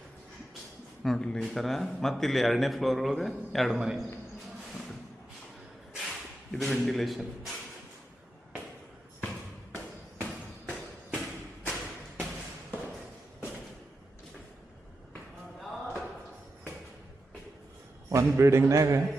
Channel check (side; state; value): both; normal; correlation 0.88